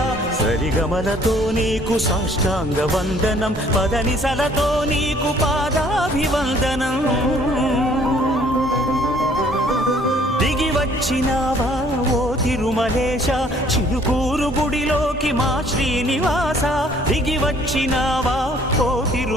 సరిగమలతో నీకు సాష్టాంగ వందనం, పదనిసలతో నీకు పాదాభివందనం. దిగి వచ్చినావా ఓ తిరుమలేశ, చిలుకూరు గుడిలోకి మా శ్రీనివాస, దిగి వచ్చినావా ఓ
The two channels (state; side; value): normal; both; correlation 0.59